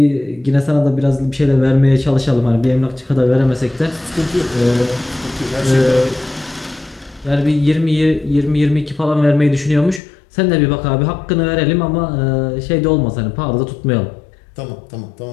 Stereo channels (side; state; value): right; drops out; at 10.0 s